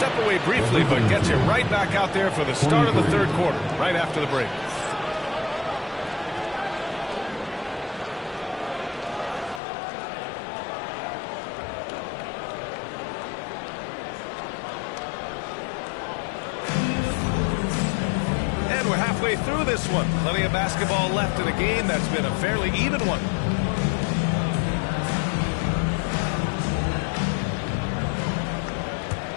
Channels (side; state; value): right; drops out; at 9.6 s